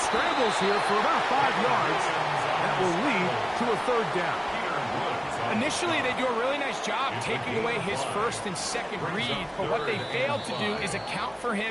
scrambles here for about 5 yards. That will lead to a third down. Initially, they do a really nice job taking away his first and second read, but what they failed to do is account for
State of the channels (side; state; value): both; identical; correlation 1.00